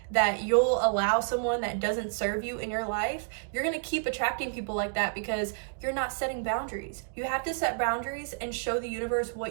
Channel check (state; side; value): silent; left; digital silence